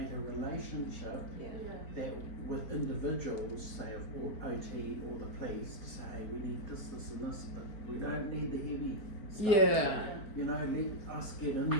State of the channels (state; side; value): late; right; 4.5 ms